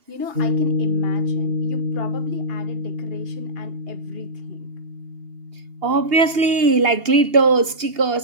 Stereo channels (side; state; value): left; late; 2.8 ms